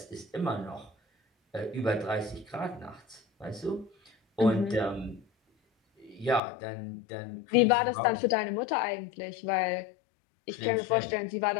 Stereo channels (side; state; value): right; drops out; at 6.4 s